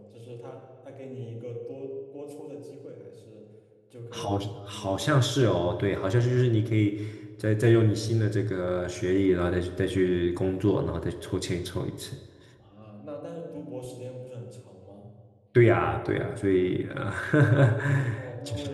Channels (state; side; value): identical; both; correlation 1.00